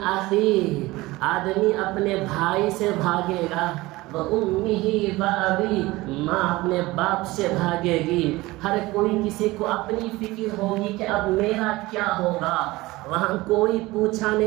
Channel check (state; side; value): quieter; left; 19.9 dB